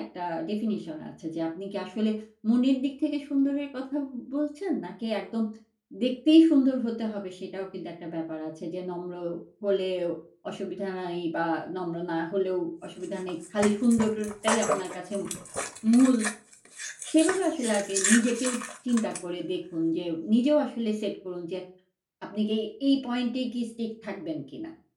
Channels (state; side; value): identical; both; correlation 1.00